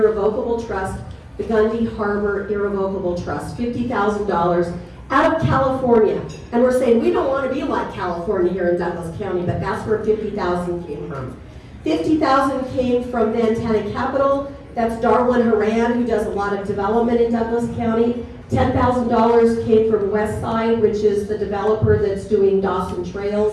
Trust, the Gundy Harbor Irrevocable Trust, $50,000 out of California. And we're saying we don't want to be like California here in Douglas County, but that's where $50,000 came from. $50,000 came from Montana Capital. That's Darwin Haran, who does a lot of development in Douglas County. $10,000 came from Westside, which is the developer that's doing Dawson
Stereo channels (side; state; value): both; identical; correlation 1.00